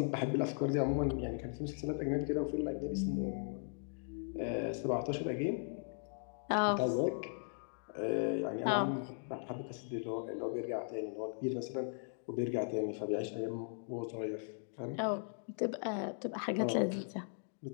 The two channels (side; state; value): right; silent; digital silence